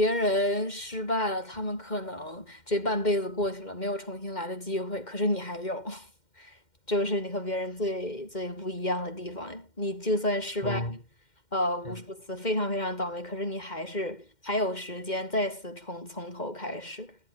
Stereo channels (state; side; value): late; right; 2.1 ms